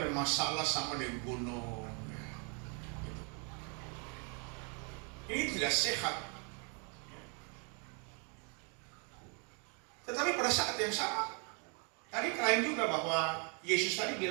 masalah sama dengan gunung. Ini tidak sehat. Tetapi pada saat yang sama, tadi klaim juga bahwa Yesus tadi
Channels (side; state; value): left; quieter; 37.2 dB